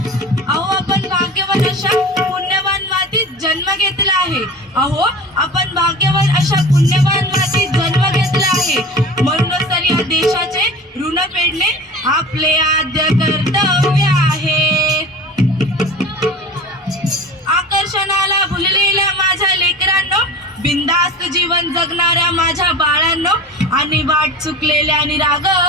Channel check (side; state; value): both; normal; correlation 0.35